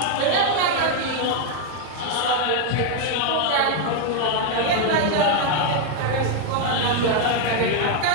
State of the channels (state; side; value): different; both; correlation 0.01